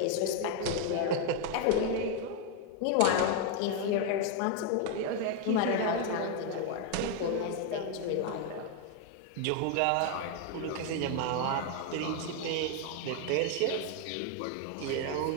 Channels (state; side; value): different; both; correlation 0.01